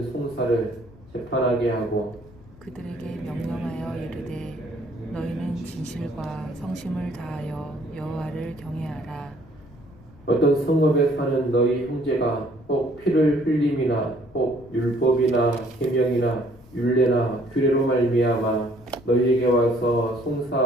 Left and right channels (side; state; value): left; noise; rumble, 23 dB below the sound